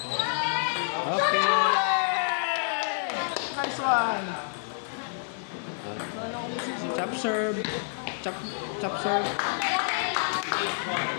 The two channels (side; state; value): right; silent; digital silence